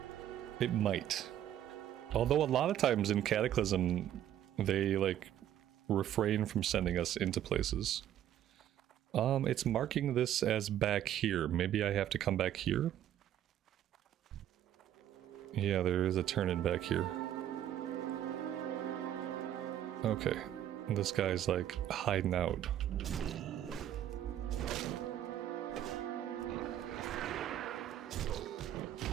It might. Although a lot of times in Cataclysm, they like refrain from sending us into places. It's marking this as back here. Maybe I have to come back here? Yeah, there is a turn-in back here. Okay. This guy's like hiding out.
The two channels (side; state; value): left; quieter; 11.3 dB